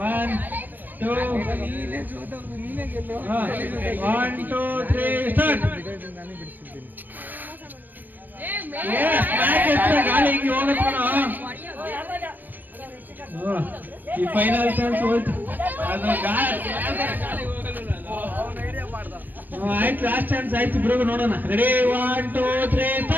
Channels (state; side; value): late; left; 0.090 ms